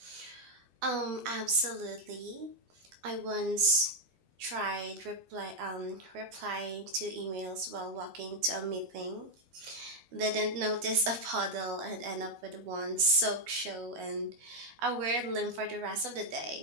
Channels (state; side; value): late; left; 12 ms